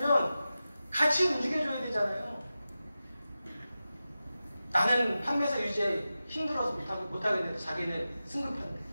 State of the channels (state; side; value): inverted; both; correlation -0.93